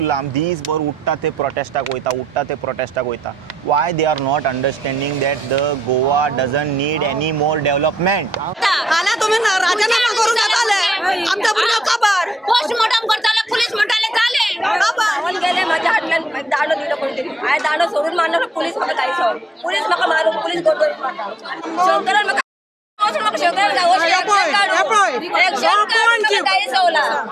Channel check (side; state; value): both; normal; correlation 0.80